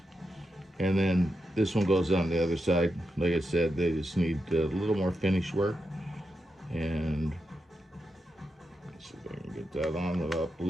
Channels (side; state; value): both; normal; correlation 0.87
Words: And then this one goes on the other side. Like I said, they just need a little more finish work. And see if I can get that on without